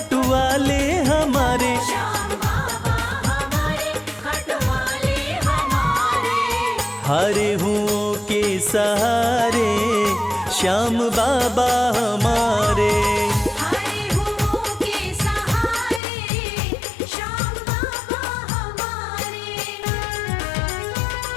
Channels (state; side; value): drops out; right; at 16.0 s